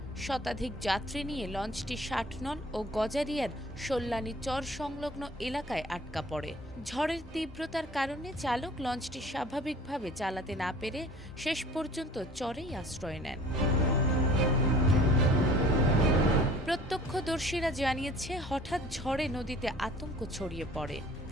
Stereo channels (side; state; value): both; normal; correlation 0.49